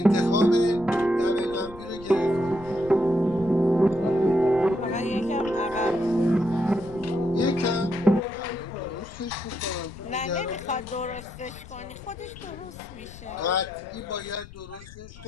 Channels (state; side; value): noise; left; rumble, 18 dB below the sound